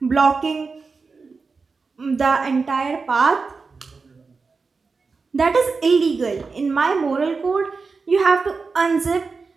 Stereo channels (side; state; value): left; quieter; 4.5 dB